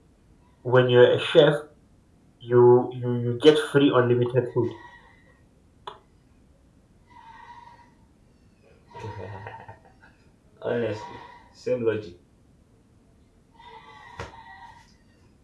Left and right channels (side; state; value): both; identical; correlation 1.00